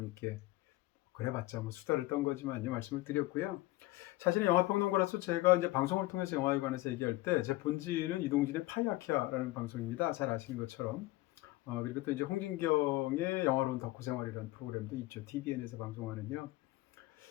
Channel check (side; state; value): right; quieter; 18.7 dB